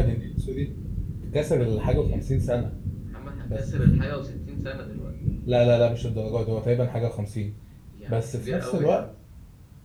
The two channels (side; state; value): both; identical; correlation 1.00